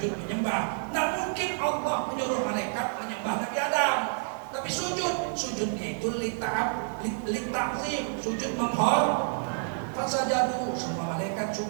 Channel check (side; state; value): left; silent; digital silence